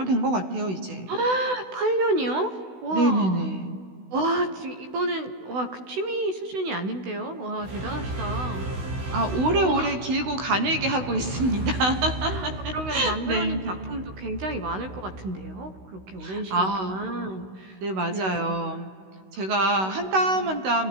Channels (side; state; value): left; late; 16 ms